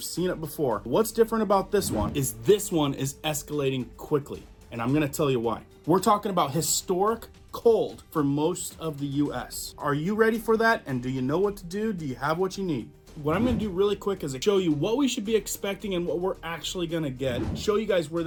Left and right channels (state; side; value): identical; both; correlation 1.00